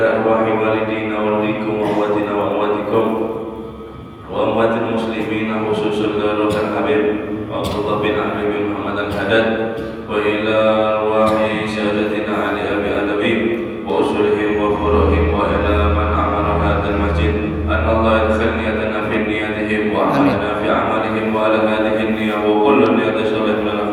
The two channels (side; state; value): both; identical; correlation 1.00